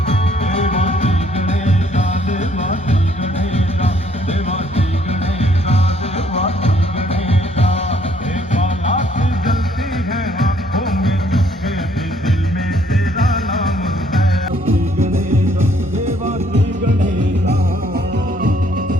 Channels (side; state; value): both; normal; correlation 0.65